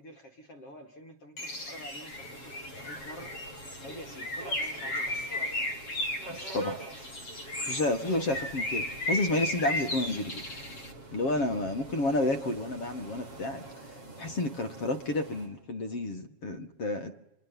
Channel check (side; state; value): right; late; 7.4 ms